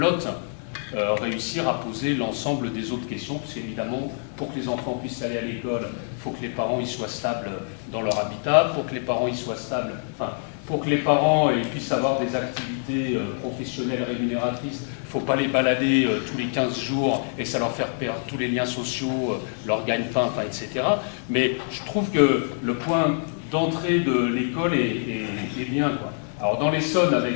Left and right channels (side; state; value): right; silent; digital silence